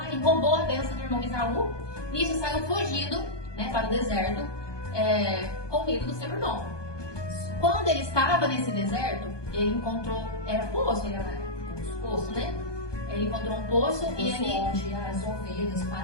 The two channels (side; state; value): right; late; 1.2 ms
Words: e roubou a bênção do irmão Esaú, e isso saiu fugindo, né, para o deserto, com medo do seu irmão. Quando ele estava nesse deserto, ele encontrou, era poço, poço, né? Ele encontrou um poço e ele... onde as ovelhas,